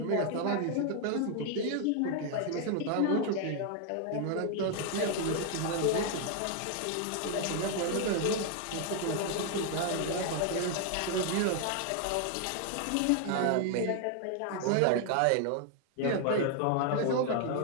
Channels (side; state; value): both; different; correlation 0.00